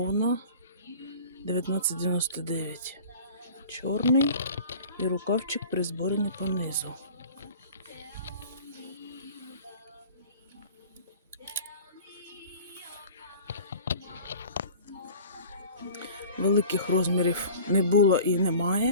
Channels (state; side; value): inverted; both; correlation -0.42